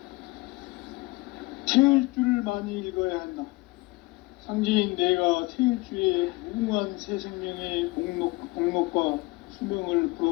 태일주를 많이 읽어야 한다. 상제인 내가 태일주의 무궁한 새 생명의 목록과 수명을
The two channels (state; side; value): quieter; right; 23.1 dB